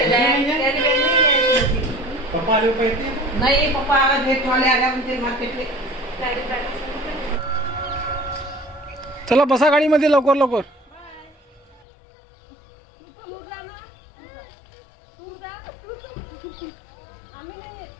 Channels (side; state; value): right; drops out; at 11.8 s